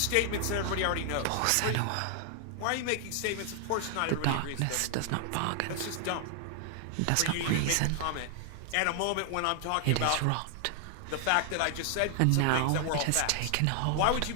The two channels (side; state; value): both; different; correlation 0.00